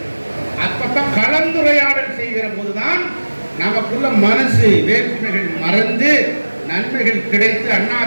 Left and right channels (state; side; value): inverted; both; correlation -1.00